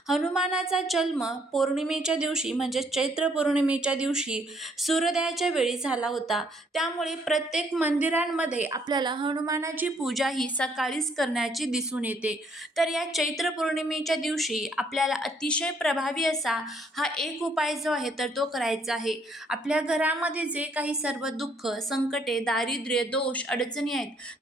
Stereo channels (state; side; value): normal; both; correlation 0.67